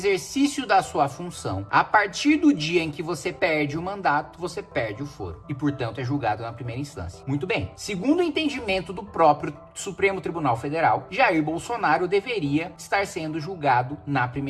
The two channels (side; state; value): both; identical; correlation 1.00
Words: da sua função, a partir do dia em que você perde o mandato, você perde o foro e, portanto, é julgado na primeira instância. Muito bem. Segundo o entendimento do próprio Supremo Tribunal Federal, Jair Bolsonaro deveria estar sendo julgado na